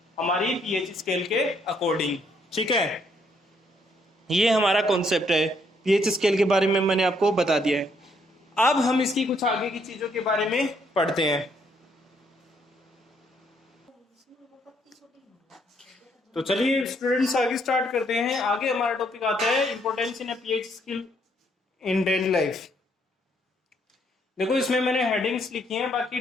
हमारी पीएच स्केल के अकॉर्डिंग। ठीक है, ये हमारा कॉन्सेप्ट है। पीएच स्केल के बारे में मैंने आपको बता दिया है। अब हम इसकी कुछ आगे की चीजों के बारे में पढ़ते हैं। तो चलिए स्टूडेंट्स आगे स्टार्ट करते हैं। आगे हमारा टॉपिक आता है importance in pH scale in daily life. देखो इसमें मैंने हेडिंग्स लिखी हैं, बाकी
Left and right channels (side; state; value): both; normal; correlation 0.70